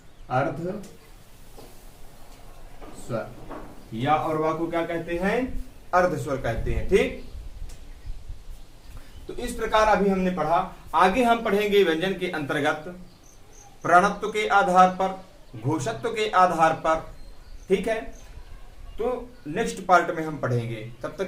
अर्ध स्वर। या और वा को क्या कहते हैं? अर्ध स्वर कहते हैं। ठीक। तो इस प्रकार अभी हमने पढ़ा। आगे हम पढ़ेंगे व्यंजन के अंतर्गत प्रणत्व के आधार पर, घोषत्व के आधार पर। ठीक है। तो नेक्स्ट पार्ट में हम पढ़ेंगे। तब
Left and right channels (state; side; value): identical; both; correlation 1.00